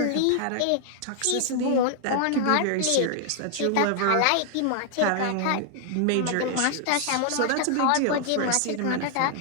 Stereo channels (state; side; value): different; both; correlation 0.00